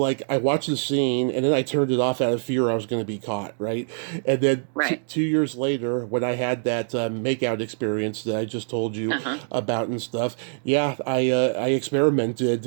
I watched the scene, and then I turned it off out of fear I was going to be caught, right? And then 2 years later, when I had that makeout experience that I just told you about and stuff, I experimented,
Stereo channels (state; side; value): silent; left; digital silence